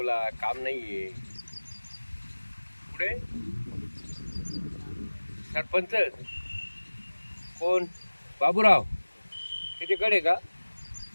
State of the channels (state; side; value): inverted; both; correlation -1.00